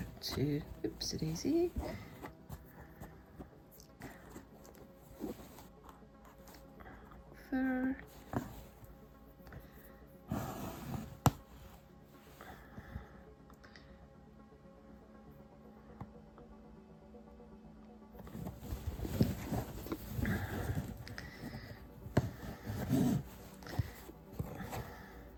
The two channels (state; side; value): identical; both; correlation 1.00